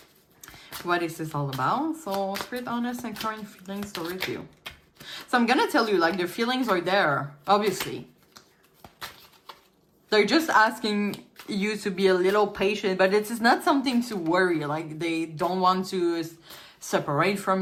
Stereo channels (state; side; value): identical; both; correlation 1.00